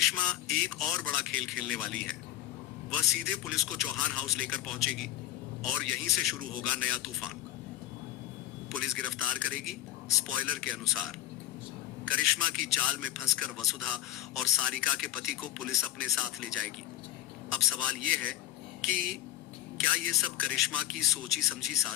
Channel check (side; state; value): right; quieter; 14.0 dB